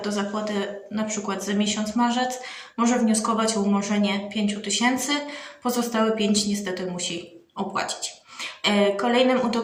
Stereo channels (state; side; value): identical; both; correlation 1.00